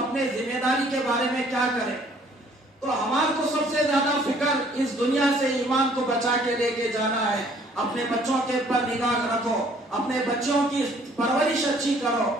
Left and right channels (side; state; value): both; normal; correlation 0.59